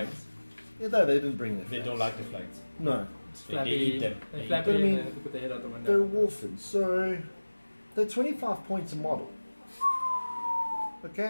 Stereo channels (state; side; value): inverted; both; correlation -1.00